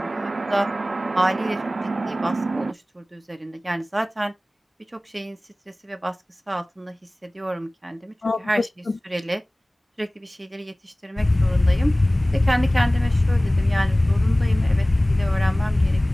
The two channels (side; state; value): both; normal; correlation 0.98